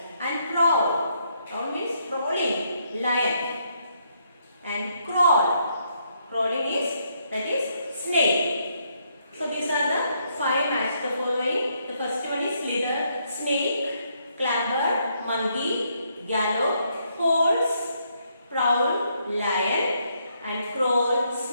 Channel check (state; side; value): inverted; both; correlation -0.74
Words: And prowl. Prowl means prowling. Lion. And crawl. Crawling is snake. So these are the 5 match the following. The first one is slither, snake, clamber, monkey, gallop, horse, prowl, lion, and crawl,